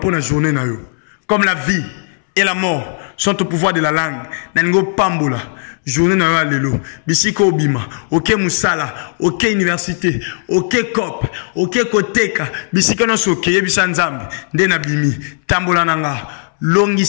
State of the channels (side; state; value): right; silent; 68 dB below the other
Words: journée na yo comme la vie et la mort sont au pouvoir de la langue na lingo pambola journée na yo lelo bisiko obima oke musala oke université oke cop oke koteka bisiko no soke yebisa nzambe nde na bimi tambola nanga